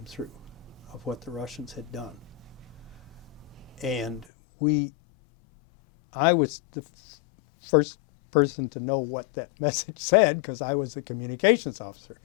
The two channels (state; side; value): drops out; right; at 4.2 s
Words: through of what the Russians had done. And I was the first person to know what that message said because I was the communications officer.